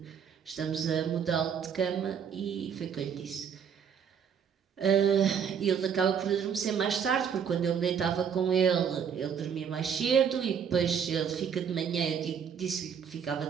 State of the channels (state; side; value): quieter; left; 7.5 dB